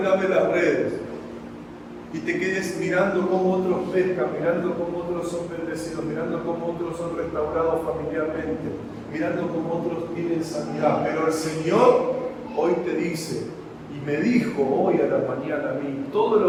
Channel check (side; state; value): both; identical; correlation 1.00